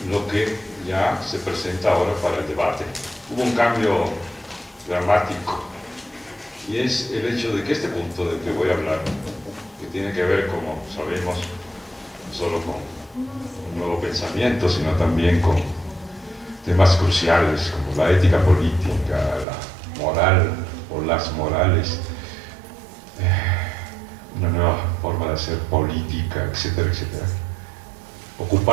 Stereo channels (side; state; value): left; drops out; at 19.5 s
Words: lo que ya se presenta ahora para el debate. Hubo un cambio dramático, y es el hecho de que este punto del que voy a hablar, que tiene que ver, como sabemos, no solo con un nuevo pensamiento, sino también con temas cruciales como la ética política, la moral o las morales, una nueva forma de hacer política, etcétera, etcétera.